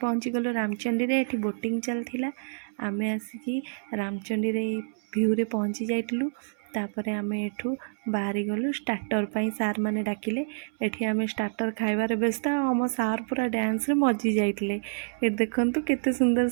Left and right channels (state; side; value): silent; left; 60 dB below the other